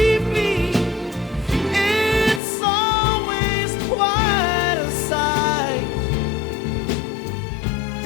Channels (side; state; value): right; drops out; at 2.4 s